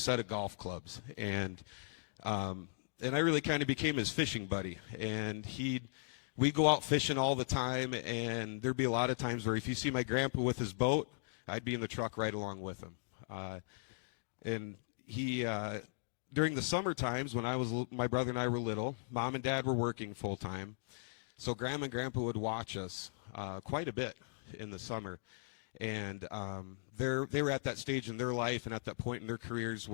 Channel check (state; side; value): silent; right; digital silence